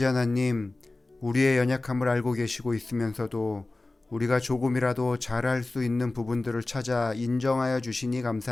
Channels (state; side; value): quieter; right; 3.0 dB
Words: 하나님, 우리의 연약함을 알고 계시고 있으면서도 우리가 조금이라도 잘할 수 있는 부분들을 찾아 인정하여 주시니